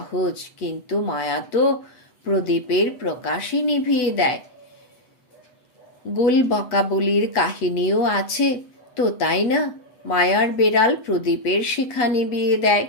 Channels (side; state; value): right; late; 8.0 ms